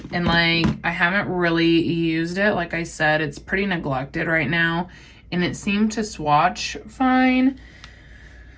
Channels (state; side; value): identical; both; correlation 1.00